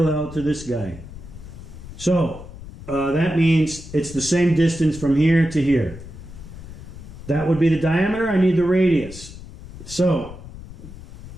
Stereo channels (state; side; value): noise; left; rumble, 14 dB below the sound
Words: to this guy. So that means it's the same distance from here to here. That would be the diameter. I need the radius. So